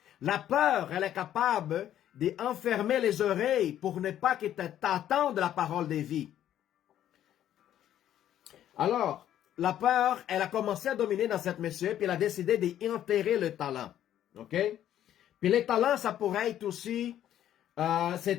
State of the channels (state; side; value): quieter; right; 11.4 dB